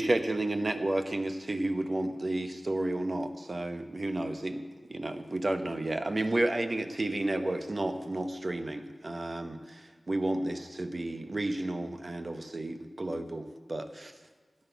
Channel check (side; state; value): both; normal; correlation 0.98